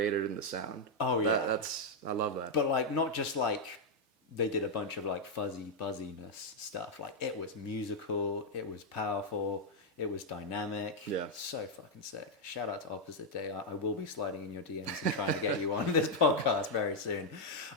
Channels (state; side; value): normal; both; correlation -0.01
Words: in the sound. I love that. But like not just like they did a bunch of like fuzzy buzziness stuff. Like it was musical, it was powerful, it was dynamic. So fucking sick. Shout out to Opposite Day. I will be sliding in your DMs and trying to get you on this podcast very soon.